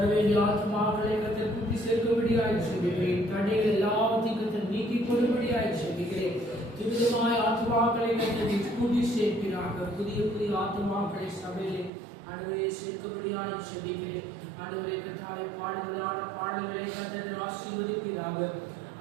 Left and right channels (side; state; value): left; drops out; at 11.9 s